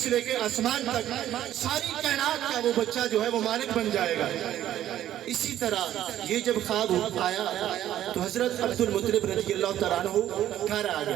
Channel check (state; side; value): quieter; left; 12.2 dB